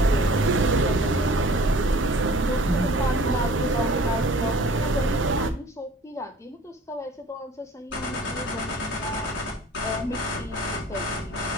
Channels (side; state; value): both; normal; correlation 0.47